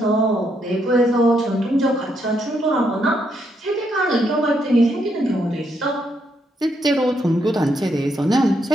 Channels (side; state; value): both; normal; correlation 0.77